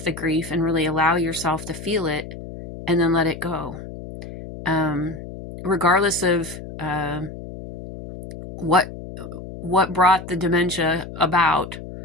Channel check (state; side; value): noise; left; hum, 12 dB below the sound